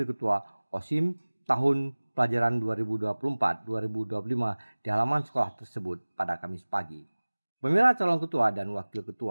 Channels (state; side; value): inverted; both; correlation -1.00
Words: ketua OSIM tahun pelajaran 2024-2025 di halaman sekolah tersebut pada Kamis pagi. Pemilihan calon ketua dan wakil